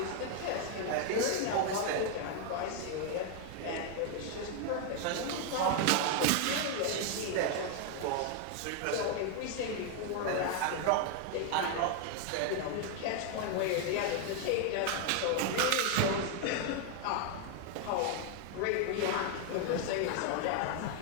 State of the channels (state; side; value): different; both; correlation 0.00